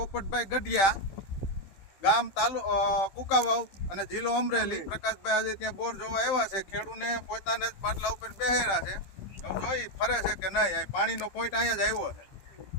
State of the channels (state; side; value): late; right; 15 ms